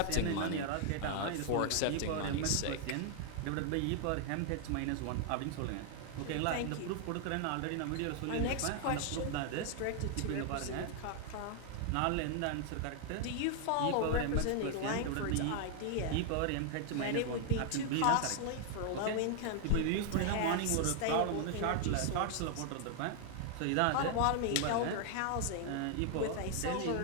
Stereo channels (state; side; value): different; both; correlation 0.00